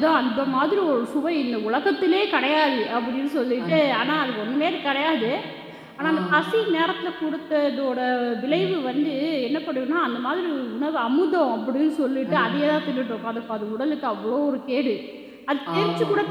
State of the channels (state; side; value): identical; both; correlation 1.00